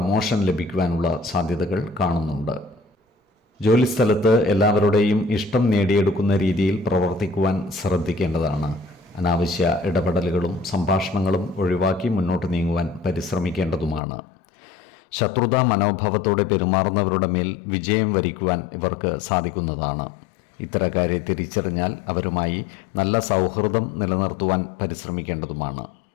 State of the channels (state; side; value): drops out; right; at 14.0 s